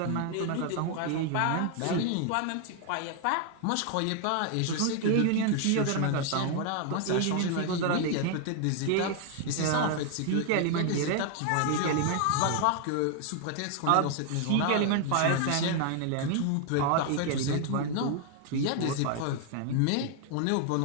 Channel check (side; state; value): both; different; correlation 0.00